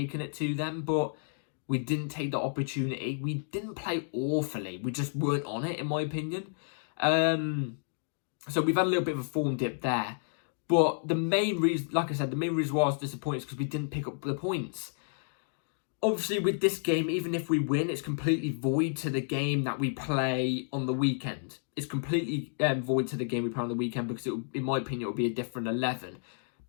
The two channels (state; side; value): silent; right; digital silence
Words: it to them. But we didn't take the opportunity. We didn't play awfully. We just weren't on it, in my opinion. So we've had a little bit of a form dip there. But the main reason, like I said, the main reason why I was disappointed is because we didn't pick up the points. Obviously, with this game, even if we win, it's completely void to the game that we play on the weekend. It's completely void to the game we play on the weekend because, in my opinion, it will be a different 11.